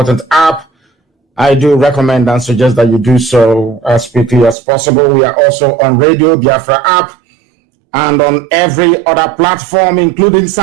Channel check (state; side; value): drops out; left; at 4.5 s